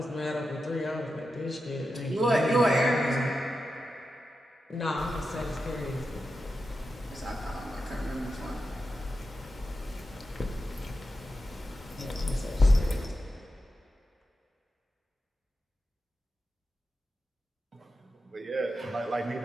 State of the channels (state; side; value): normal; both; correlation 0.90